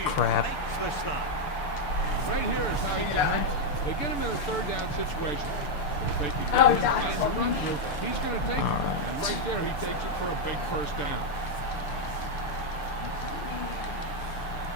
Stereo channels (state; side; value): late; right; 6.8 ms